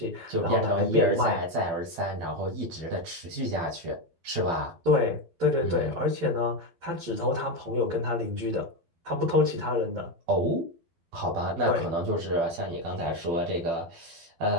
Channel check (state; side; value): late; left; 12 ms